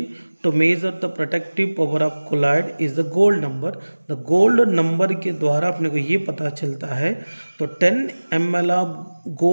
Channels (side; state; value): both; inverted; correlation -1.00